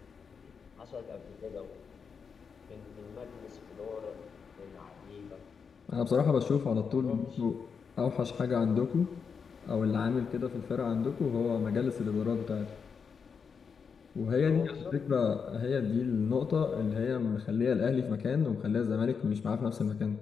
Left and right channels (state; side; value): quieter; right; 6.0 dB